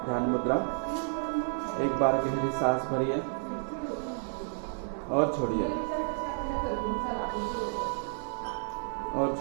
ध्यान मुद्रा। एक बार गहरी सांस भरिए और छोड़िए और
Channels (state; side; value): silent; left; digital silence